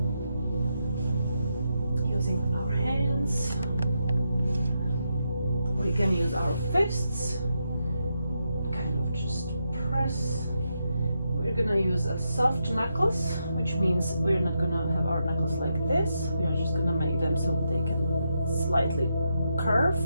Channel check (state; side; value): inverted; both; correlation -0.84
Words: using our hands. We can use our fists, kind of just press. We're gonna use a soft knuckles, which means we're not gonna have our knuckles like this. We are just gonna make them so they can slightly curve